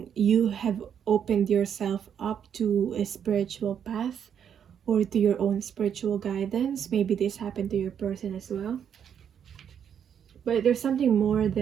opened yourself up to a spiritual path or to your own spiritual guidance. Maybe this happened to your person as well. But there's something more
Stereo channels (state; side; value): quieter; left; 8.3 dB